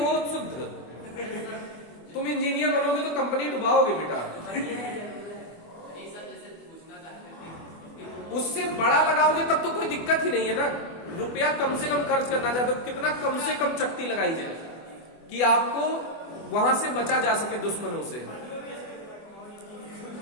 शुद्ध। तुम इंजीनियर बनोगे तो कंपनी डुबाओगे बेटा। उससे बड़ा लगाओगे तब तो कोई दिक्कत ही नहीं है ना। रुपया कम से कम खर्च करना चाहते हो, कितना कम से कम चक्ति लगाई जाए कि आपको वहां से बचा जा सके दुश्मनों से।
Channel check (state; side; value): late; right; 24 ms